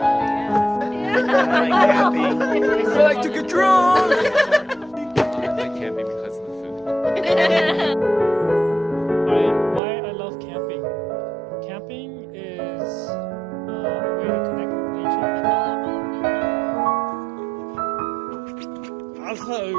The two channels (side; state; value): left; drops out; at 9.8 s